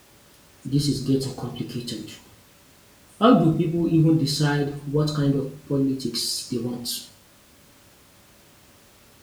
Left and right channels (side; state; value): both; identical; correlation 1.00